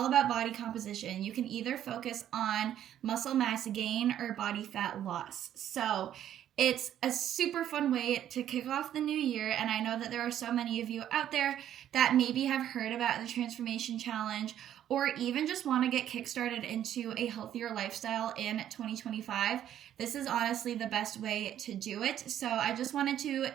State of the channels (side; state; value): left; quieter; 11.0 dB